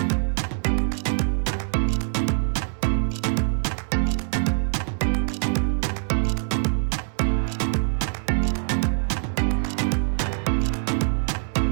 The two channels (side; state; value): left; silent; digital silence